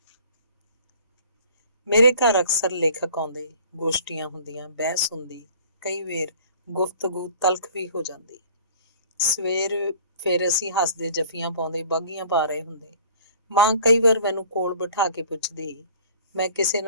ਮੇਰੇ ਘਰ ਅਕਸਰ ਲੇਖਕ ਆਉਂਦੇ, ਗੋਸ਼ਟੀਆਂ ਹੁੰਦੀਆਂ, ਬਹਿਸ ਹੁੰਦੀ, ਕਈ ਵੇਰ ਗੁਫ਼ਤਗੂ ਤਲਖ ਵੀ ਹੋ ਜਾਂਦੀ। ਸਵੇਰ ਫਿਰ ਅਸੀਂ ਹੱਸਦੇ, ਜੱਫੀਆਂ ਪਾਉਂਦੇ, ਬਾਗੀਆਂ ਪਾ ਰਹੇ ਹੁੰਦੇ। ਮਾਂ ਕਈ ਵਾਰ ਮੈਨੂੰ ਕੋਲ ਬਿਠਾ ਕੇ ਪੁੱਛਦੀ, ਮੈਂ ਕਿਸੇ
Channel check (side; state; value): both; inverted; correlation -0.49